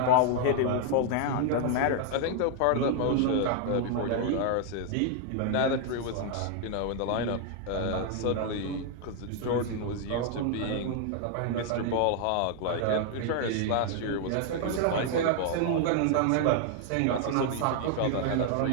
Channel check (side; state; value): both; different; correlation 0.00